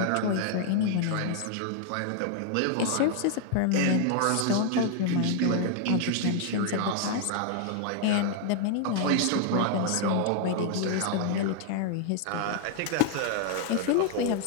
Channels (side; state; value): both; different; correlation 0.00